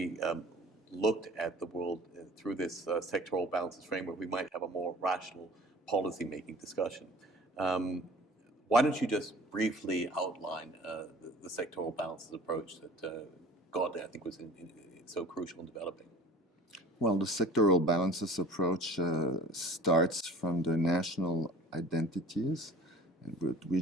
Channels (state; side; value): normal; both; correlation 0.46